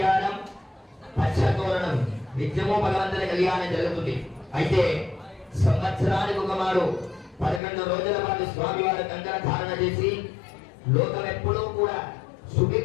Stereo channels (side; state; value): right; drops out; at 7.6 s